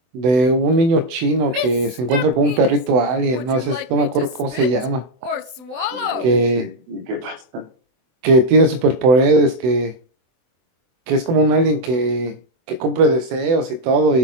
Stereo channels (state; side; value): late; left; 24 ms